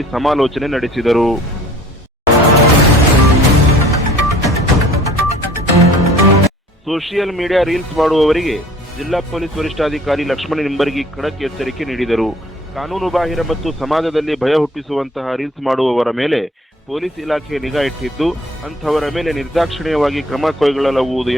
ಸಮಾಲೋಚನೆ ನಡೆಸಿದರು. ಸೋಷಿಯಲ್ ಮೀಡಿಯಾ ರೀಲ್ಸ್ ಮಾಡುವವರಿಗೆ ಜಿಲ್ಲಾ ಪೊಲೀಸ್ ವರಿಷ್ಠಾಧಿಕಾರಿ ಲಕ್ಷ್ಮಣ ನಿಂಬರ್ಗಿ ಖಡಕ್ ಎಚ್ಚರಿಕೆ ನೀಡಿದರು. ಕಾನೂನು ಬಾಹಿರ ಮತ್ತು ಸಮಾಜದಲ್ಲಿ ಭಯ ಹುಟ್ಟಿಸುವಂತಹ ರೀಲ್ಸ್ ಮಾಡುವವರ ಮೇಲೆ ಪೊಲೀಸ್ ಇಲಾಖೆ ನಿಗಾ ಇಟ್ಟಿದ್ದು, ಅಂಥವರ ಮೇಲೆ ನಿರ್ದಾಕ್ಷಿಣ್ಯವಾಗಿ ಕ್ರಮ ಕೈಗೊಳ್ಳಲಾಗುವುದು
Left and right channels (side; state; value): both; normal; correlation 0.51